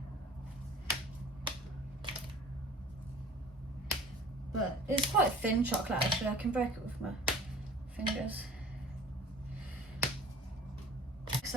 But it's quite thin chocolate actually, I can break it with my fingers.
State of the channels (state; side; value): normal; both; correlation 0.45